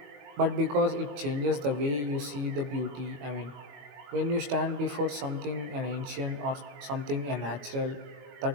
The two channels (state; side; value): late; left; 21 ms